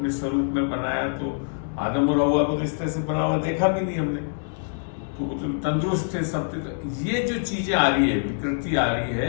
स्वरूप में बनाया, तो आदम और हव्वा को इस तरह से बना हुआ देखा भी नहीं हमने, तो वो तो तंदुरुस्त थे सब थे। तो ये जो चीजें आ रही है, विकृति आ रही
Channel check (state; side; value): silent; right; digital silence